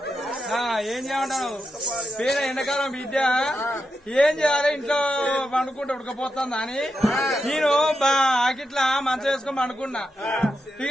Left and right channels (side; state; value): both; normal; correlation 0.87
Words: ఏం చేయమంటావు పేద ఎండాకాలం బిడ్డ ఏం చేయాలి ఇంట్లో పండుకుంటే ఉడకపోతుందా అని నేను ఆకిట్లా మంచం వేసుకొని పండుకున్నా